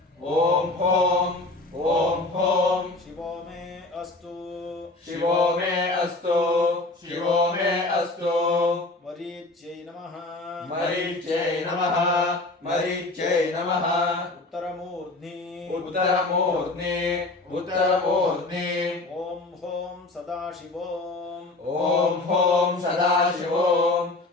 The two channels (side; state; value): right; quieter; 3.0 dB